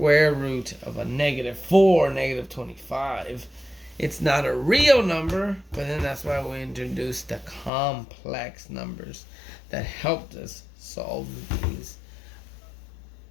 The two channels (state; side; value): drops out; right; at 7.7 s